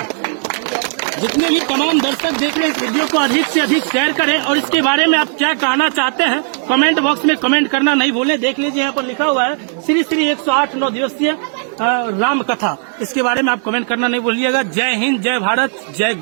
जितने भी तमाम दर्शक देख रहे हैं इस वीडियो को अधिक से अधिक शेयर करें और इसके बारे में आप क्या कहना चाहते हैं कमेंट बॉक्स में कमेंट करना नहीं भूलें। देख लीजिए, यहाँ पर लिखा हुआ है श्री श्री 108 9 दिवसीय राम कथा। इसके बारे में आप कमेंट करना नहीं भूलिएगा। जय हिंद, जय भारत, जय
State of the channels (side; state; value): left; silent; 65 dB below the other